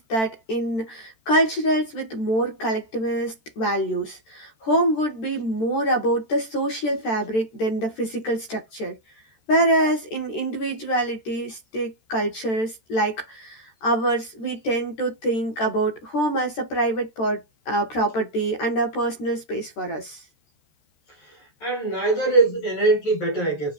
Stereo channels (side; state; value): right; late; 13 ms